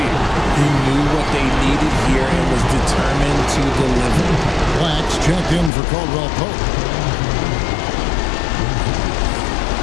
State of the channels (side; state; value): right; drops out; at 5.7 s